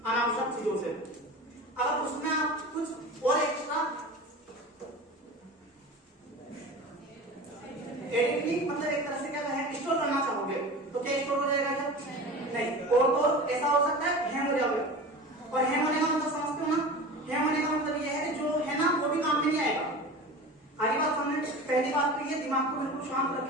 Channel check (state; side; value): normal; both; correlation 0.34